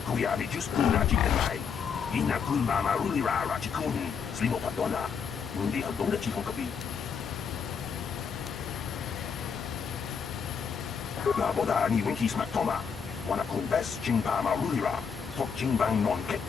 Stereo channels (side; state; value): right; quieter; 6.5 dB